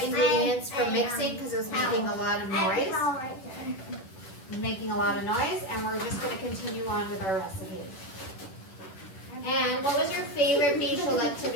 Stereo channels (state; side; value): late; right; 11 ms